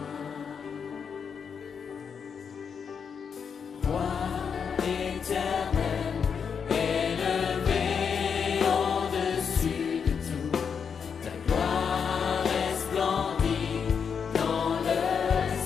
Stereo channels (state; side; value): quieter; right; 6.6 dB